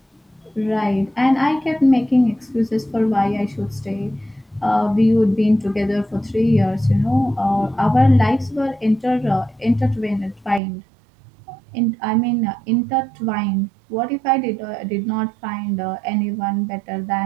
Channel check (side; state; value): left; drops out; at 10.6 s